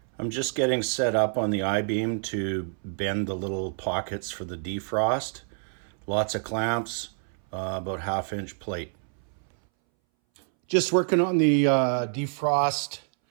I'm just getting set up on the I-beam to bend the little pockets for the defrost. Lots of clamps, about 1/2 inch plate. Just working on the defrost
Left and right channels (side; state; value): left; silent; 60 dB below the other